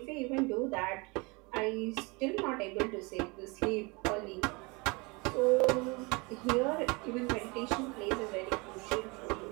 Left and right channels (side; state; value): left; quieter; 27.6 dB